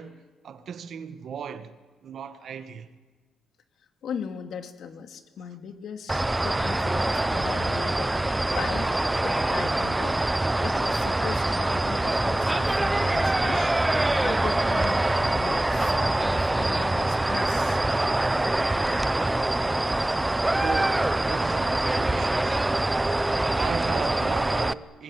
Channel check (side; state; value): both; normal; correlation 0.98